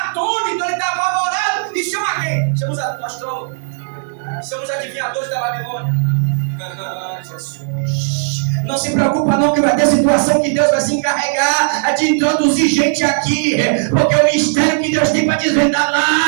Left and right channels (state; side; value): silent; left; digital silence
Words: atônito, ele está apavorado. E chama quem? Chama os astrólogos. Chama os adivinhadores da Babilônia. Jesus. Não se preocupa não que vai ter situação que Deus vai se encarregar de introduzir gente aqui. Porque o mistério que Deus tem para desvendar